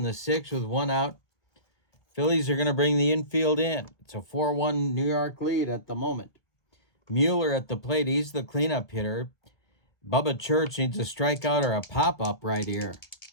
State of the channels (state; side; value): late; right; 1.7 ms